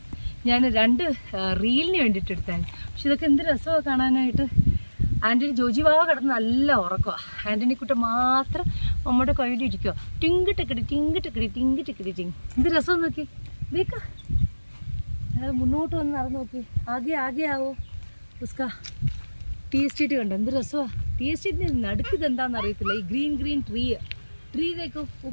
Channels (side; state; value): both; inverted; correlation -1.00